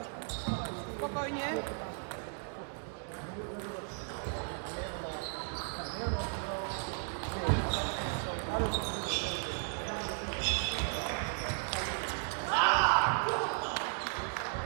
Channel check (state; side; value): silent; left; 54 dB below the other